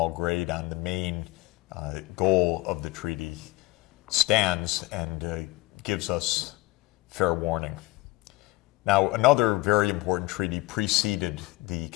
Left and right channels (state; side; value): quieter; right; 21.0 dB